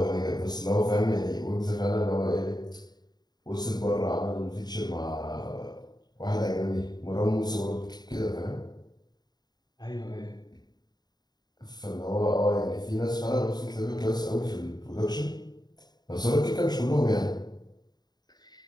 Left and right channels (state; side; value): late; right; 0.20 ms